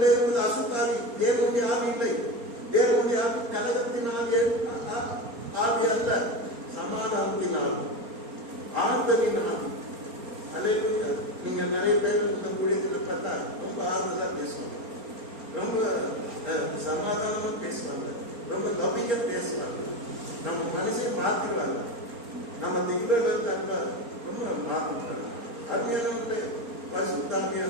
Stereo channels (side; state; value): left; late; 4.3 ms